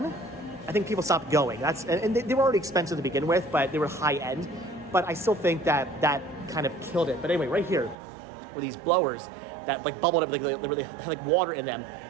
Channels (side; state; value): left; drops out; at 8.0 s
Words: I think people stopped going. And they were already expensive to begin with, but they were high end. But I still think that kind of killed it. But anyway, right here were these blowers that like bubbled up, they had like water in them,